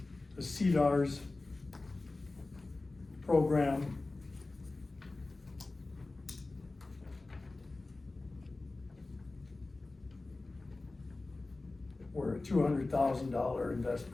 The CDARS program were a $200,000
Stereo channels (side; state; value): right; quieter; 3.2 dB